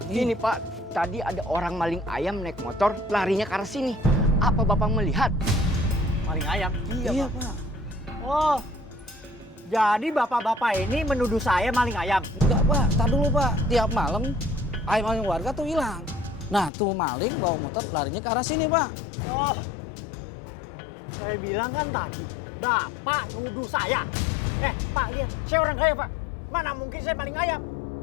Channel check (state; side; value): drops out; right; at 16.7 s